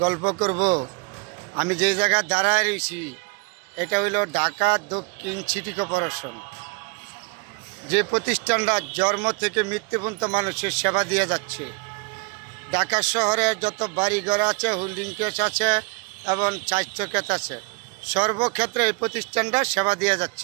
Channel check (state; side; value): quieter; left; 32.2 dB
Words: গল্প করব। আমি যে জায়গায় দাঁড়ায় রয়েছি এটা হইল ঢাকা দক্ষিণ সিটি কর্পোরেশন, যে প্রতিষ্ঠানটা জন্ম থেকে মৃত্যু পর্যন্ত মানুষের সেবা দিয়ে যাচ্ছে। ঢাকা শহরে যত বাড়িঘর আছে, হোল্ডিং কেস আছে এবং চাইত্য ক্ষেত আছে, সর্বক্ষেত্রে এই প্রতিষ্ঠানটা সেবা দিয়ে